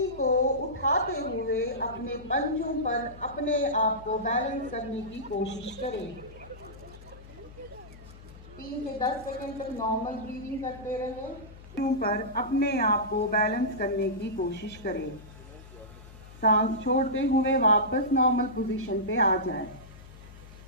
को उठाते हुए अपने पंजों पर अपने आप को बैलेंस करने की कोशिश करें। 3 से 10 सेकंड तक नॉर्मल ब्रीदिंग करते रहे। पर अपने आप को बैलेंस करने की कोशिश करें। सांस छोड़ते हुए वापस नॉर्मल पोजीशन पे आ जाए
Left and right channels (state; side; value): noise; left; hum, 18 dB below the sound